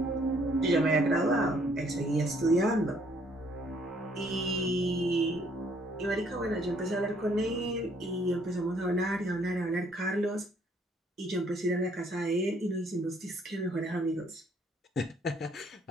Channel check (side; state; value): both; normal; correlation 0.65